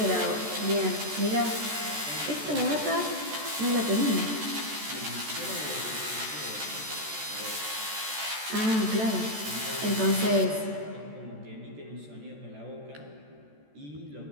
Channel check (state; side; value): late; left; 14 ms